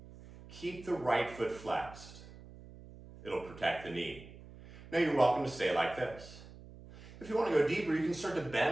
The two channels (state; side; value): noise; right; hum, 18 dB below the sound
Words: Keep the right foot flexed. It'll protect the knee. Now you're welcome to stay like this. If you want to go deeper, you can start to